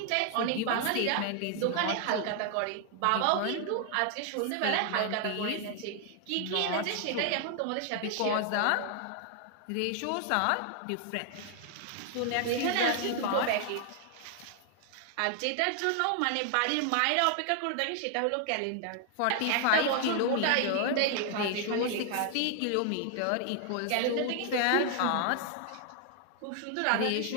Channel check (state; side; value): different; both; correlation 0.00